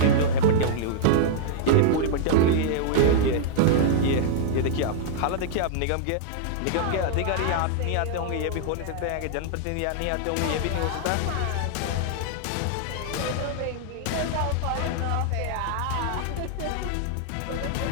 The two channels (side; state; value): both; different; correlation -0.01